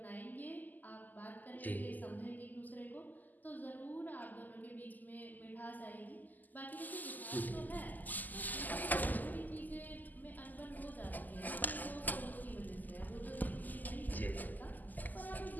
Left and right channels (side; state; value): right; late; 0.084 ms